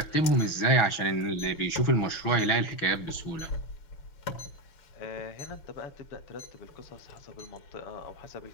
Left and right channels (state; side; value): late; right; 6.2 ms